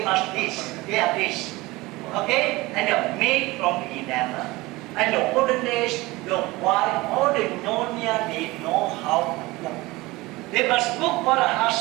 must this, they are this. Okay? And they're made from enamel. And the olden days, the wife, all the Nyonya, they know how to cook. They must cook for the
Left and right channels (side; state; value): left; quieter; 21.1 dB